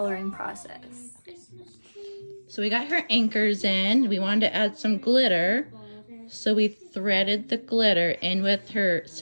process. So we got her anchors in. We wanted to add some glitter. So we threaded the glitter in with her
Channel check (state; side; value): inverted; both; correlation -1.00